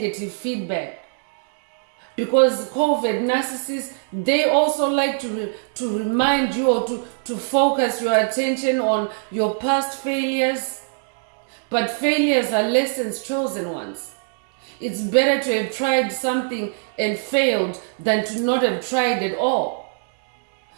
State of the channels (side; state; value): left; silent; 64 dB below the other